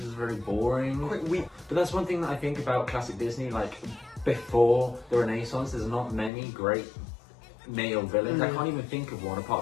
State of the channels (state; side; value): drops out; right; at 6.3 s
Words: are very boring. Quite weak. But that's one thing that I think about classic Disney. Like, before the Renaissance, there's not many great male villains. I can't even think of one